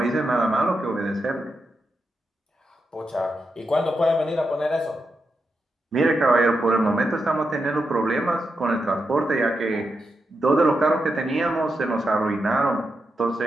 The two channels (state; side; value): normal; both; correlation 0.86